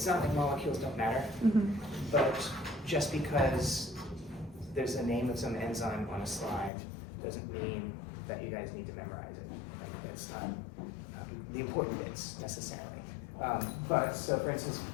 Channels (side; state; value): right; drops out; at 6.7 s